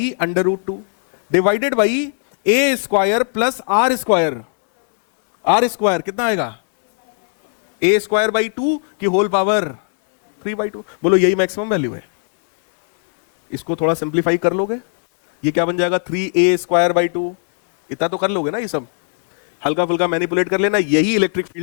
divided by A square plus R square. R square कितना आएगा? ए स्क्वायर बाई 2 की होल पावर 3/2। बोलो यही मैक्सिमम वैल्यू है। इसको थोड़ा सिंप्लीफाई कर लोगे, ये क्या बन जाएगा? 3a square by 2। इतना तो कर लोगे ना, ये सब हल्का फुल्का मैनिपुलेट कर लेना, यही इलेक्ट्रिक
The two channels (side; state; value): right; silent; 68 dB below the other